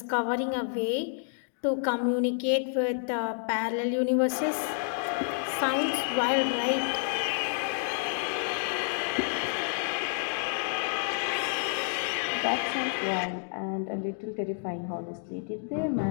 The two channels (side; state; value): right; silent; digital silence